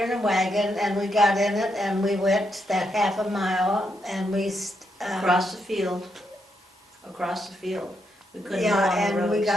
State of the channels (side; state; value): both; normal; correlation 0.80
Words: and a wagon, and we got in it, and we went that half a mile, and we, Across the field. Across the field. We couldn't go yeah, on the and we roads.